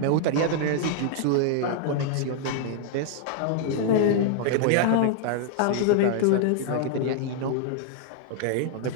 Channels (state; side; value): different; both; correlation 0.00